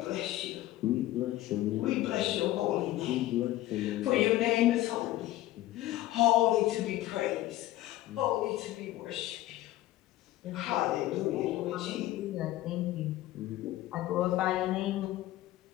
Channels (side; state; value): right; quieter; 15.5 dB